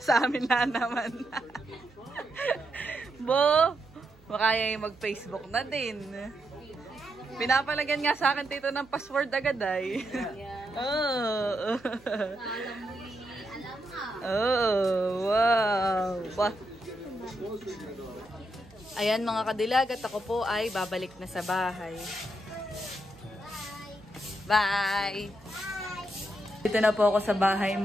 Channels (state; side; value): noise; right; hum, 27 dB below the sound